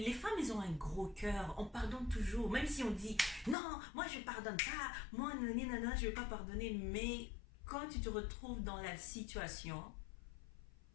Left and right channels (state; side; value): drops out; right; at 3.6 s